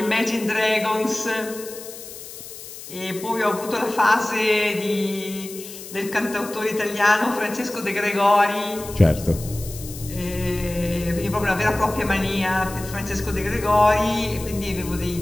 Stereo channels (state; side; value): noise; left; hiss, 13 dB below the sound